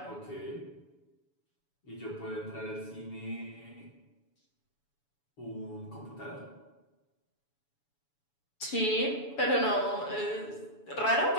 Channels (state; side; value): late; right; 7.1 ms